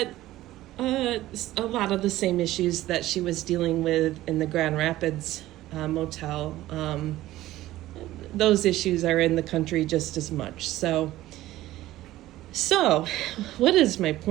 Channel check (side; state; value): left; quieter; 15.6 dB